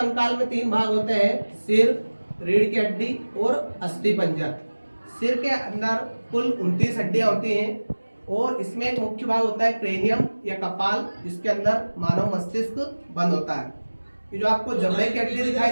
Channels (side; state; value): both; inverted; correlation -1.00